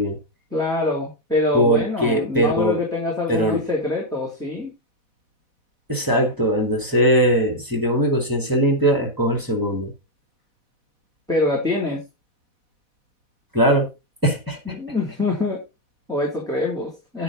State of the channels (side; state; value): left; late; 4.1 ms